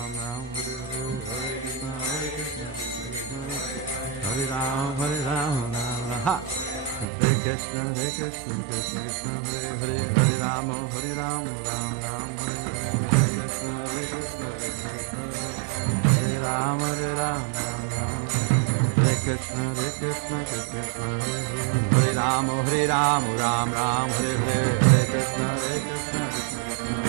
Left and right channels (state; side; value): drops out; left; at 7.1 s